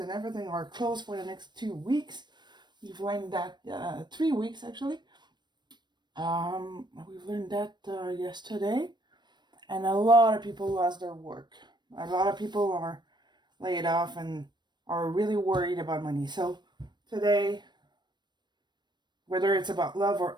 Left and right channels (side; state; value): left; late; 0.22 ms